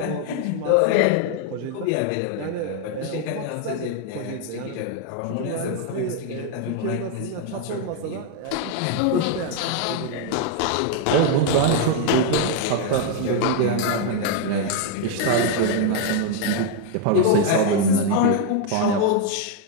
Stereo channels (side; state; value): both; different; correlation 0.01